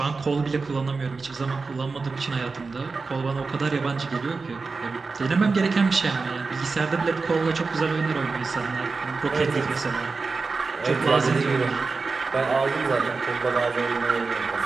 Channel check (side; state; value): left; quieter; 4.2 dB